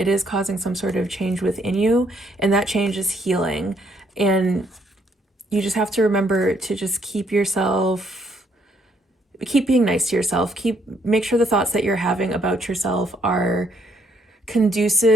is causing some sort of change within you, and that change is healing. And you just have to remember to just keep being nice to yourself. Make sure the thoughts that you're having about yourself are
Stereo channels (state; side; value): normal; both; correlation 0.70